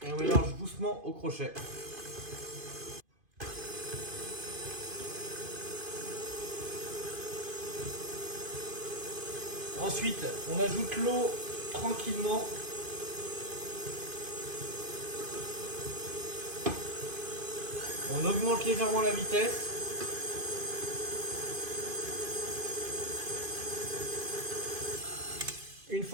et on mélange doucement au crochet. Ensuite, on ajoute l'eau tranquillement. On augmente légèrement la vitesse. Une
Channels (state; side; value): late; left; 2.5 ms